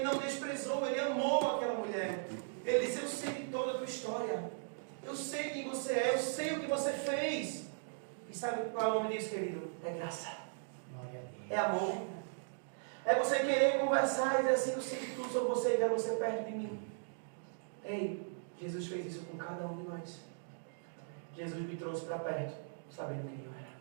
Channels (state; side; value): silent; left; digital silence